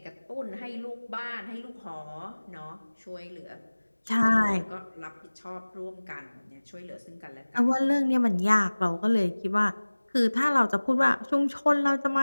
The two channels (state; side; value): inverted; both; correlation -1.00